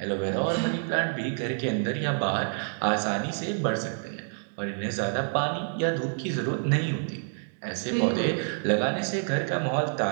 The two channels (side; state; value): left; silent; 59 dB below the other